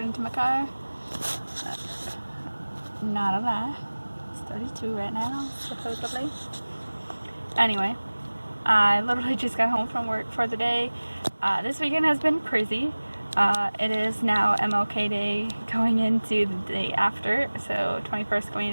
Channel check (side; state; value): both; inverted; correlation -1.00